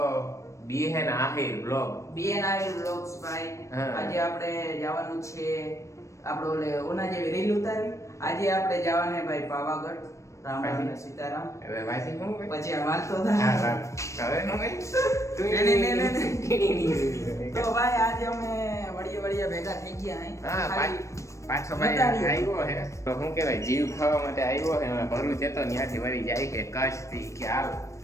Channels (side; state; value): right; late; 0.15 ms